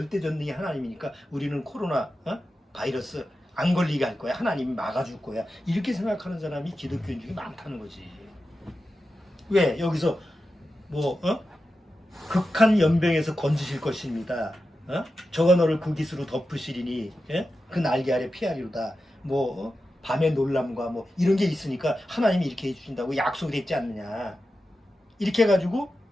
하나님이니까 우리는 코로나 바이러스 안 걸리게 할 거야. 하나님이 막아줄 거야. 이렇게 생각하는 사람이 기독교인 중에 많다는 거지. 왜? 여기서 극한 연병에서 건지실 것입니다. 저가 너를 그 깃으로 덮으시리니 그 날개 아래 피하리로다. 밤의 놀람과 이런 게 있으니까 하나님이 이렇게 해주신다고 약속이 됐지 않느냐. 이렇게 해가지고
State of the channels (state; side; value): normal; both; correlation 0.91